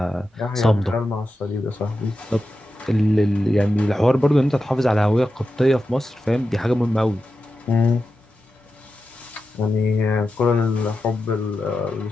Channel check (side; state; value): both; normal; correlation 0.90